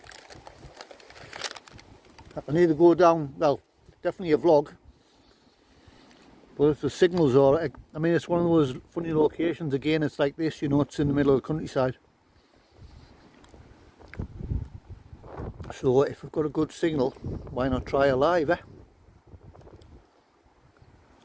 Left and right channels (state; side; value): identical; both; correlation 1.00